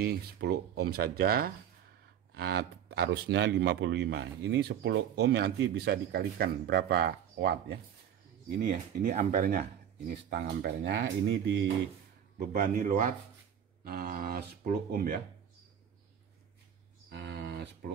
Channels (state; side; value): quieter; left; 9.3 dB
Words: 10 ohm saja. Arusnya 55. Ini 10 ohm nanti bisa dikalikan berapa watt ya. Ini ya, ini ampernya. Ini setengah ampernya. Ini dibebani load 10 ohm ya. 10